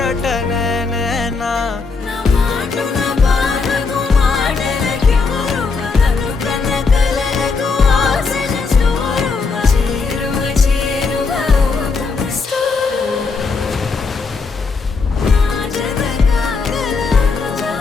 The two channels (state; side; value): quieter; right; 4.6 dB